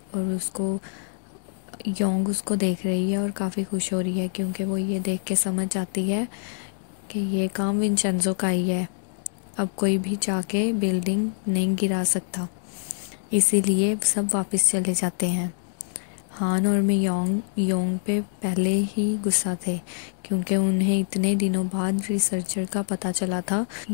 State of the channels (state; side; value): silent; right; digital silence